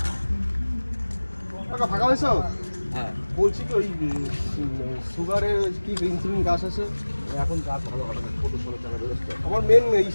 টাকা ফাঁকা হয়েছ? হ্যাঁ, বলছি কি ওই সুগারের কি ইনসুলিন গাছ আছে? এখন কাজ ভালো হবে না, ছোটো ছোটো টাকা ব্যবস্থা। আমার মেন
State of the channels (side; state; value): both; inverted; correlation -1.00